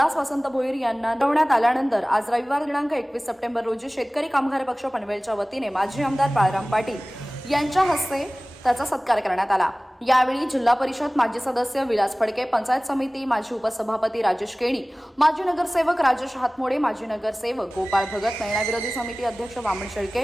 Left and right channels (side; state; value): both; normal; correlation 0.98